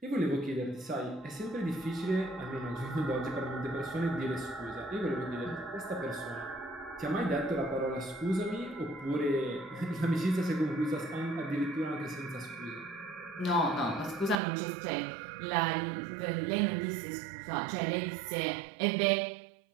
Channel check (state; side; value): drops out; left; at 14.4 s